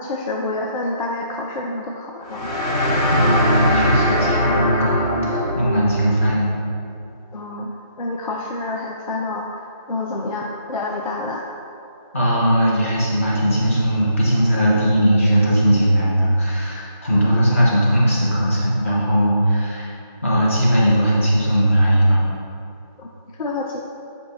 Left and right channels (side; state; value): both; inverted; correlation -0.77